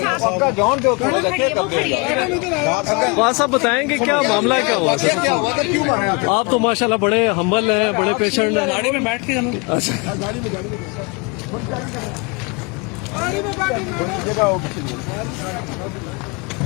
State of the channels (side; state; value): right; quieter; 29.4 dB